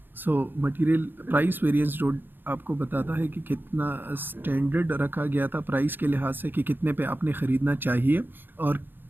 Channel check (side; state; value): left; late; 0.096 ms